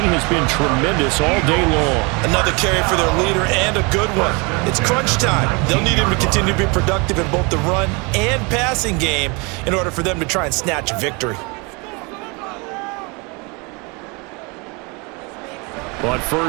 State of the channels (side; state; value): left; quieter; 29.5 dB